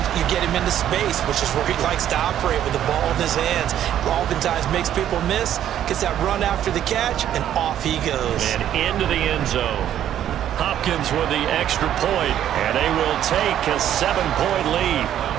you get him into space, which is where he likes to operate with the ball in his hands. Oftentimes makes people miss, gets that run after the catch, and off he goes. And into the end zone. Hopkins with the extra point, and they will take a 7-point lead.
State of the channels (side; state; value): left; quieter; 10.9 dB